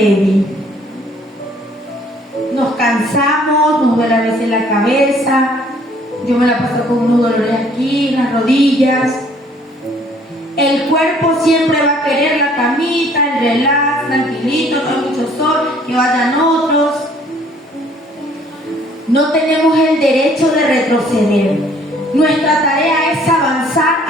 Nos cansamos, nos duele a veces la cabeza, yo me la paso con unos dolores aquí, en las rodillas. El cuerpo siempre va a querer la camita, el relax, tranquilito, no hay mucho sol, que vayan otros. No tenemos el derecho de retroceder. Nuestra tarea es avanzar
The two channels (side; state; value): both; normal; correlation 0.59